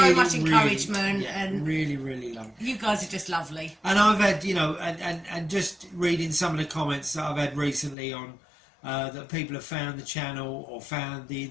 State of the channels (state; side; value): drops out; right; at 8.0 s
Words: So much encouragement, and really lovely. you guys are just lovely. And I've had, and just reading some of the comments that I've had recently on that people have found the channel or found the